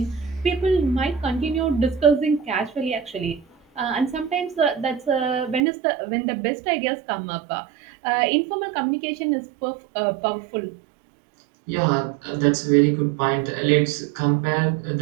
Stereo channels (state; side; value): drops out; left; at 5.6 s